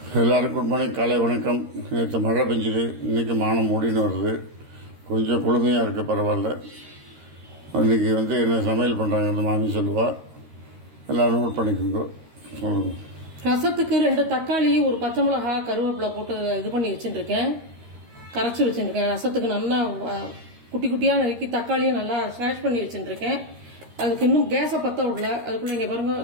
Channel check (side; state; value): left; late; 13 ms